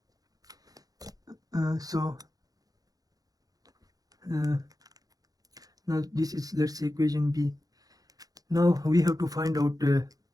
Now this is, let's say, equation B. Now we have to find out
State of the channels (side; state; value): left; late; 0.18 ms